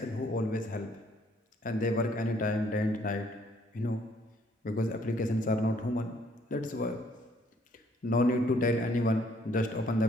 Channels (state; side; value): normal; both; correlation 0.65